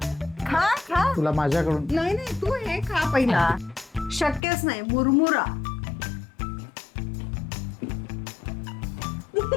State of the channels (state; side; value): drops out; right; at 4.4 s